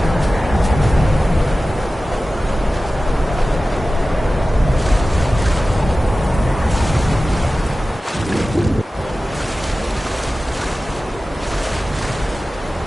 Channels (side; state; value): both; normal; correlation 0.95